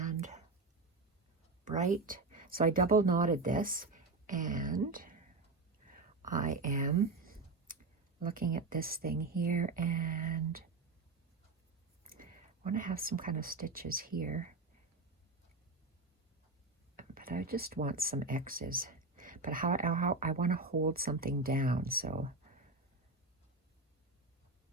bright. So I double knotted this, and I am looking at this thing here, and I want to have some kind of stitches here, but I just want some X's. But how I want to hold something down, so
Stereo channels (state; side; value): quieter; left; 3.6 dB